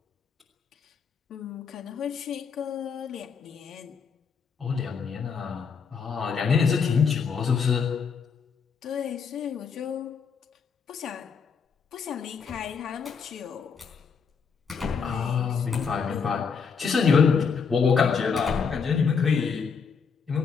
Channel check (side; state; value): right; quieter; 6.0 dB